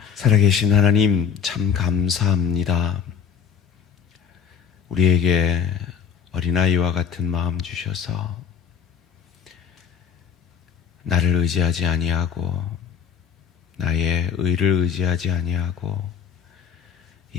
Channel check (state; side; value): quieter; right; 7.4 dB